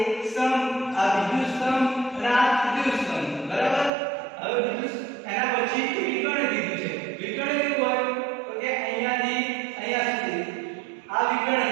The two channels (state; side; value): drops out; left; at 3.9 s